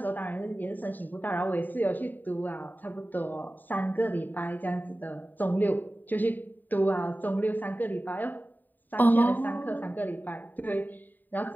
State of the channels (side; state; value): right; late; 0.088 ms